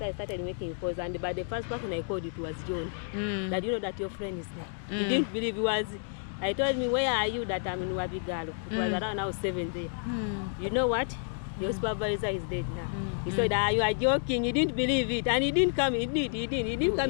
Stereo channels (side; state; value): right; silent; digital silence